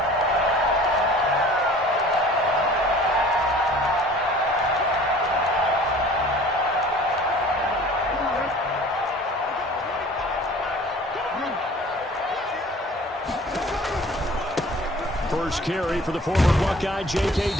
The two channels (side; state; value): both; normal; correlation 0.47